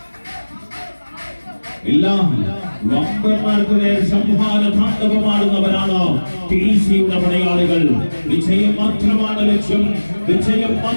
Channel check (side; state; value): both; inverted; correlation -1.00